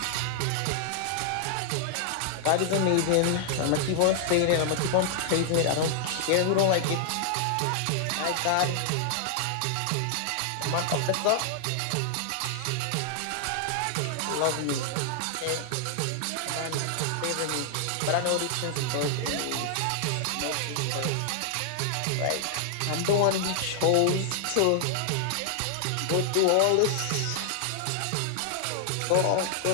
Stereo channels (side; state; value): both; different; correlation 0.00